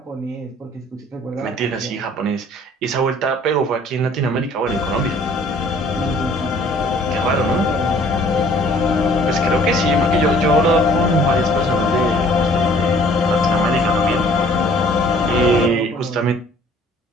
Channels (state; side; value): normal; both; correlation 0.55